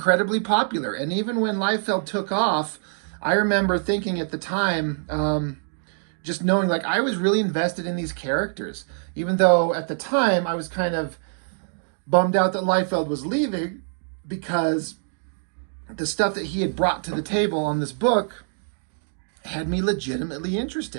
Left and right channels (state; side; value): silent; left; digital silence